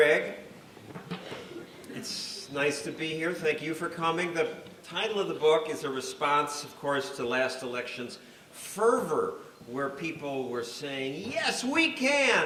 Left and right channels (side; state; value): both; identical; correlation 1.00